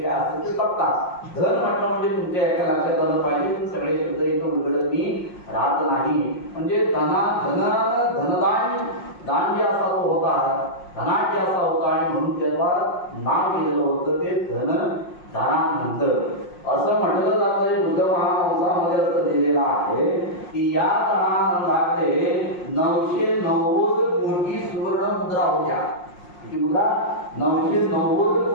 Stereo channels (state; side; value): late; right; 5.6 ms